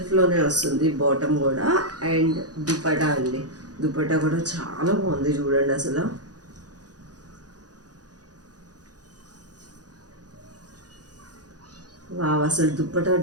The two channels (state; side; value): late; left; 0.68 ms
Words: వస్తుంది బాటమ్ కూడా. అండ్ దుపటా అండి, దుపటా కూడా చాలా బాగుంది చూడండి అసలు. వావ్! అసలు దుప్పటా